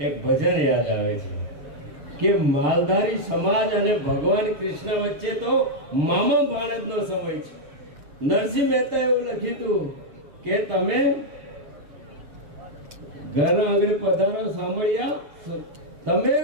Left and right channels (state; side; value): late; left; 6.7 ms